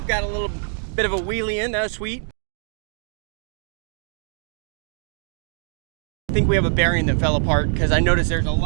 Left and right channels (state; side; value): silent; left; 63 dB below the other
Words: Got a little bit of a wheelie in, that was sweet. I think we have a bearing that fell apart because I noticed there's a